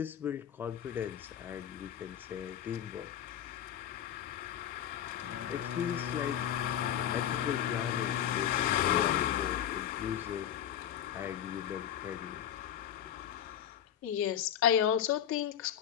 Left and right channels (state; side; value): quieter; right; 10.2 dB